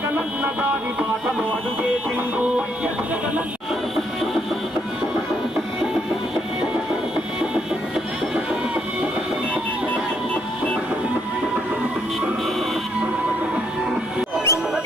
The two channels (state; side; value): normal; both; correlation 0.73